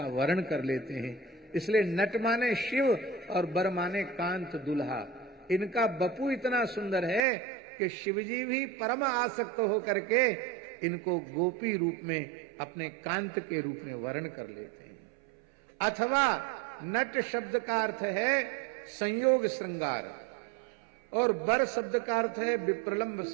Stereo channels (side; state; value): left; drops out; at 7.2 s